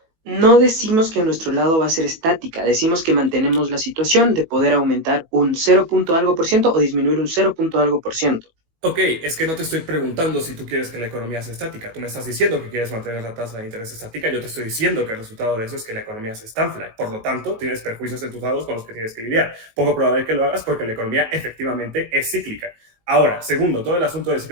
No decimos que nuestro lado va a ser estática, decimos que mantenemos la situación de poder aumentar un 0. Algo por ciento o disminuir un 0. Algo por ciento. Ok, es que no te estoy preguntando si tú quieres que la economía sea estática. Tú me estás diciendo que quieres mantener la tasa de interés estática. Yo te estoy diciendo que el resultado de eso es que la economía se estanfla. Por lo tanto, tienes perjuicios en tus lados con los que tienes que lidiar. Poco probable que lo hagas porque la economía efectivamente es cíclica. Ahora, segundo, todo el asunto del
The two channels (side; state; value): left; late; 18 ms